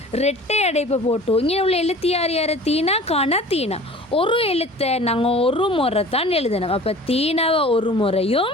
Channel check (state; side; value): normal; both; correlation 0.43